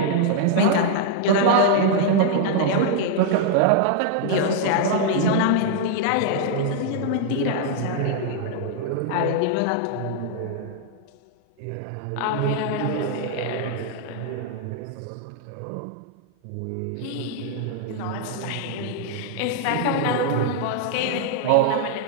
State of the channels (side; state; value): both; different; correlation 0.00